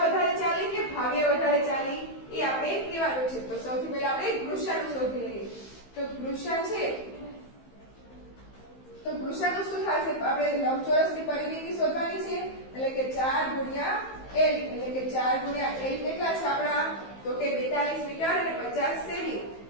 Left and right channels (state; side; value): late; right; 15 ms